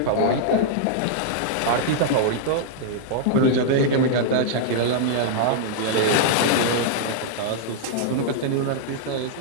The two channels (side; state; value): both; different; correlation -0.01